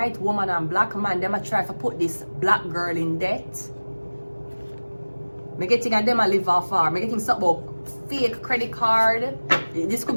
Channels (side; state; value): both; inverted; correlation -1.00